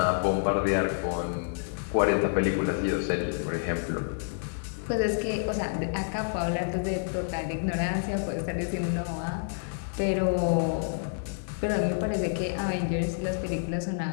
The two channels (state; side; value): silent; right; 59 dB below the other